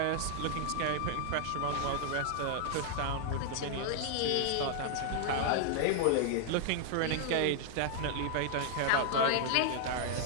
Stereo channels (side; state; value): both; different; correlation -0.01